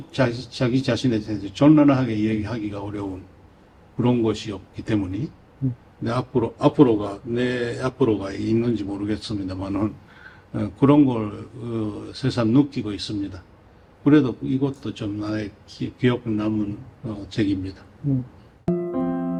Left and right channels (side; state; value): both; identical; correlation 1.00